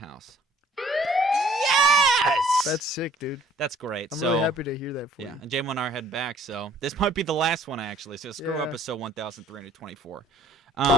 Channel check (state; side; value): normal; both; correlation 0.57